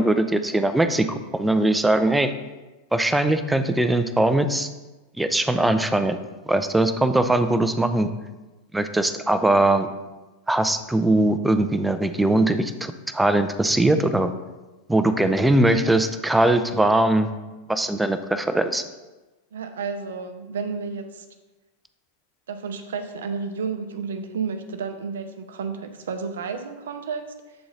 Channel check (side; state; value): both; normal; correlation 0.77